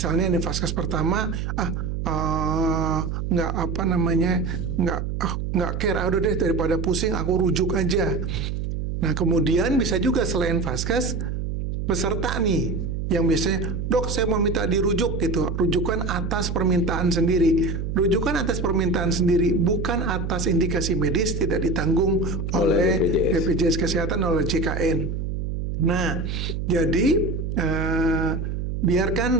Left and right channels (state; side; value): noise; right; hum, 3 dB below the sound